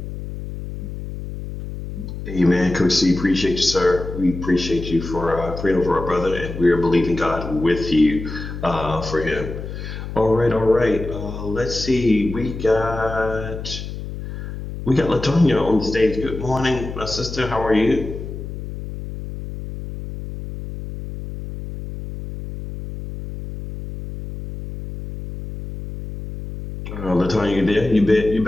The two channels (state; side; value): noise; left; hum, 9 dB below the sound